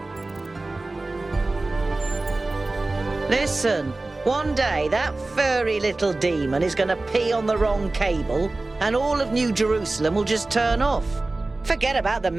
Listen, one day that furry little demon is going to pee on the wrong cable and all of New Jerusalem will just turn off. Forget about the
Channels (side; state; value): left; quieter; 3.1 dB